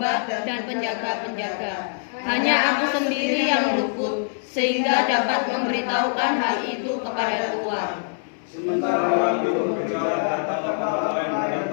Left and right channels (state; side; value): silent; right; digital silence